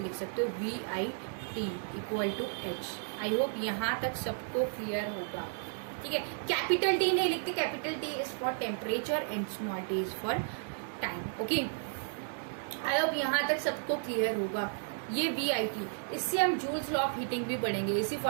लिख सकते हो VIT equal to H। I hope यहाँ तक सबको क्लियर होगा। ठीक है, कैपिटल T नहीं लिखते, capital T is for temperature and small t is for time. Okay, I hope यहाँ तक सबको क्लियर होगा। ये VIT, इससे हम जूल्स लॉ ऑफ हीटिंग भी पढ़ेंगे, इसी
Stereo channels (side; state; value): left; silent; digital silence